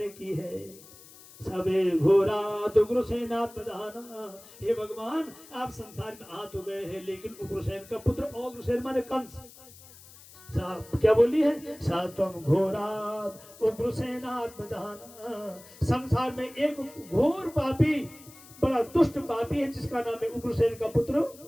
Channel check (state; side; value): noise; left; hiss, 21 dB below the sound